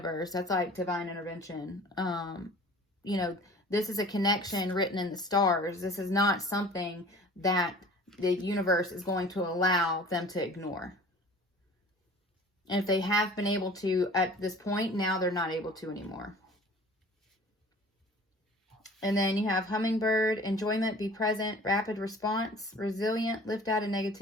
That's like divine intervention. You know, this is a connection written in the stars. This is not something that the universe is going to allow them to ignore. And if they have been able to at this point, now they're not able to anymore. And then you have hummingbird, enjoyment, be present, rapid response, resilient, lift out of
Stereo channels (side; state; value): both; normal; correlation 0.45